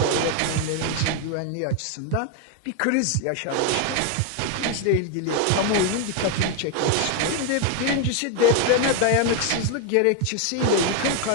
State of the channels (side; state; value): both; different; correlation 0.01